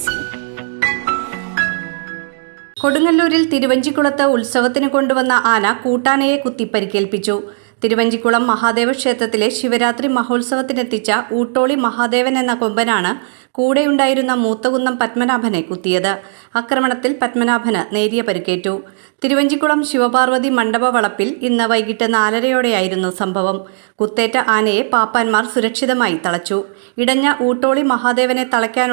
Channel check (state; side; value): silent; left; digital silence